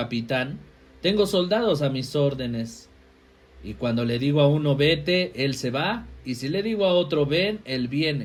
tengo soldados a mis órdenes. Y cuando le digo a uno vete, él se va, y si le digo a otro ven, él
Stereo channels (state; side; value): identical; both; correlation 1.00